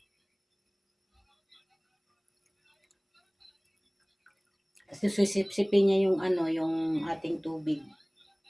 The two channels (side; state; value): both; identical; correlation 1.00